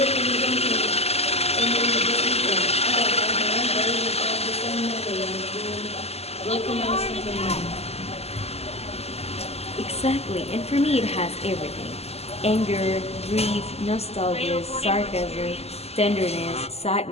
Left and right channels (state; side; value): late; right; 0.30 ms